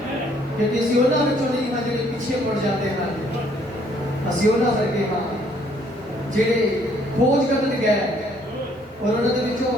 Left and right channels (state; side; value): normal; both; correlation 0.64